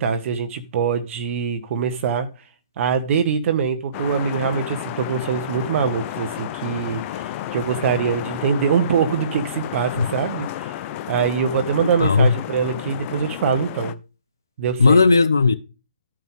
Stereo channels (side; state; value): both; inverted; correlation -0.58